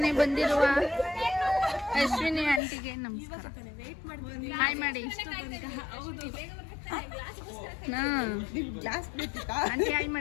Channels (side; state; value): right; drops out; at 2.6 s